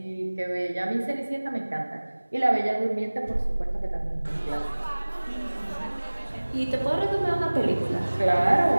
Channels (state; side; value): inverted; both; correlation -1.00